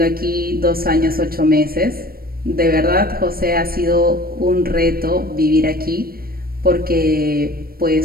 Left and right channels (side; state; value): left; late; 0.44 ms